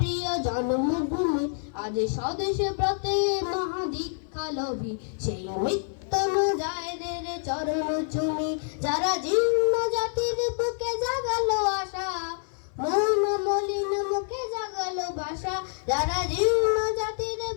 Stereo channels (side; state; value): right; silent; 60 dB below the other